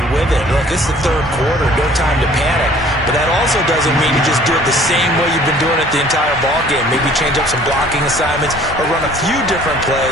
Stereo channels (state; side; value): normal; both; correlation 0.54